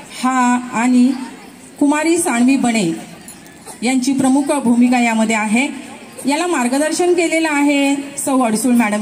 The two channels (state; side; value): identical; both; correlation 1.00